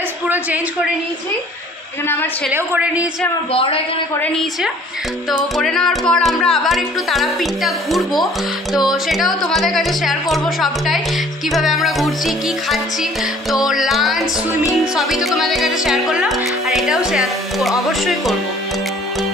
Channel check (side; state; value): both; normal; correlation 0.54